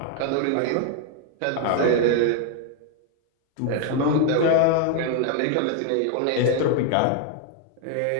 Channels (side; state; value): both; different; correlation 0.00